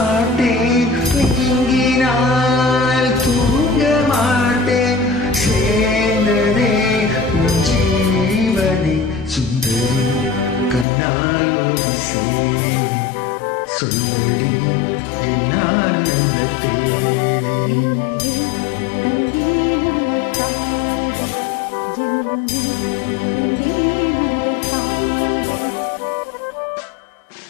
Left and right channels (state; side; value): drops out; right; at 10.9 s